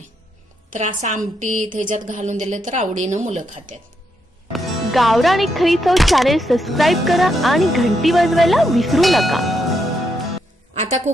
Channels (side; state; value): both; normal; correlation 0.80